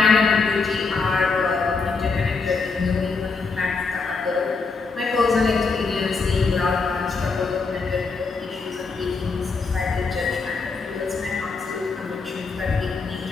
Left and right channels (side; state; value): right; quieter; 4.4 dB